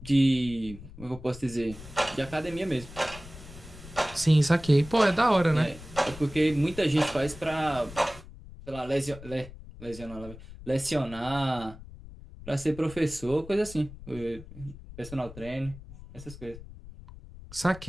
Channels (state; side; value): noise; left; rumble, 16 dB below the sound